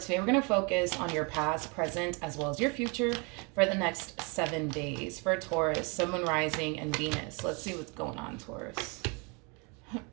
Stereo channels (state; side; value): quieter; left; 32.1 dB